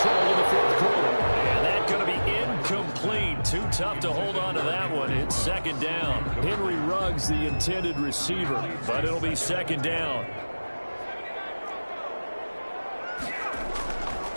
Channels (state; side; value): inverted; both; correlation -1.00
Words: in the 4th quarter. And that's going to be incomplete. Too tough to hold on to that one. It's second down. Henry Ruggs, the intended receiver. But it'll be second down.